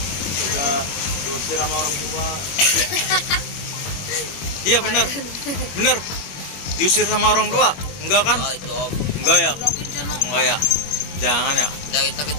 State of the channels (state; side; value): late; right; 21 ms